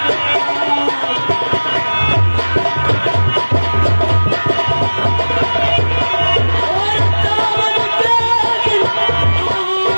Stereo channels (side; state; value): both; inverted; correlation -1.00